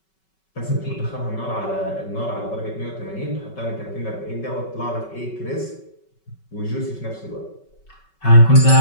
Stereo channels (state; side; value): late; right; 5.3 ms